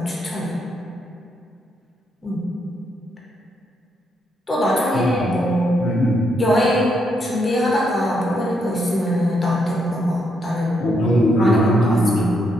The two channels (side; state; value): both; normal; correlation 0.77